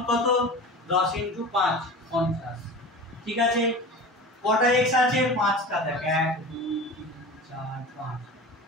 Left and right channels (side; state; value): both; normal; correlation 0.34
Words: কত? 10 × 5 50, ঠিক আছে? কটা x আছে? 5টা, দেখ 1 2 3 4 5,